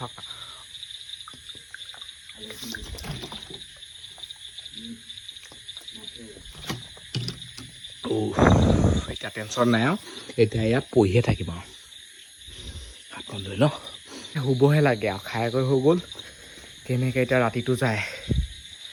এতিয়া টেনশ্যন নাই আৰু এতিয়া ইয়াত পঢ়িয়ে থাকিম আৰু হাতখন লৈ ন শুবহে লাগে আৰু খাই কৰি হৈ গ'ল কেনেকৈ এতিয়া ৰাতিটো যায়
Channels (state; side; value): identical; both; correlation 1.00